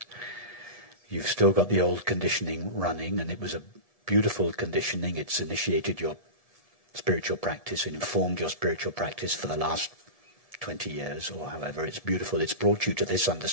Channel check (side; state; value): right; late; 1.7 ms